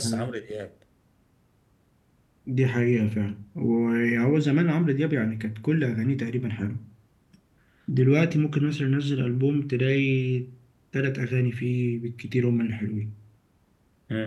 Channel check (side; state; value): both; identical; correlation 1.00